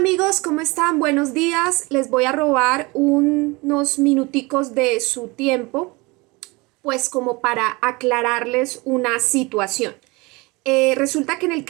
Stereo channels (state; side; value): quieter; left; 24.9 dB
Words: ¿cómo están? Buenos días. Les voy a robar unos minuticos de su tiempo, pues como para aclararles una situación. Resulta que en el